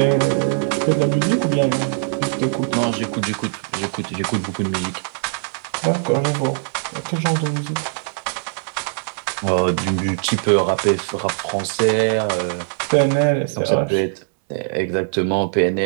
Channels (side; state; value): left; silent; digital silence